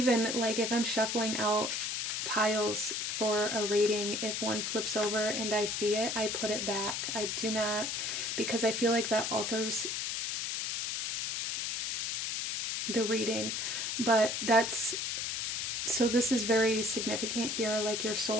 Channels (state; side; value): noise; left; hiss, 1 dB below the sound